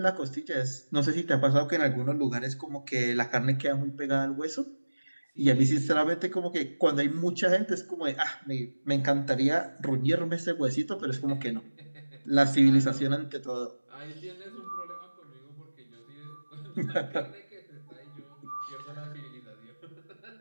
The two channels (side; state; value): both; inverted; correlation -1.00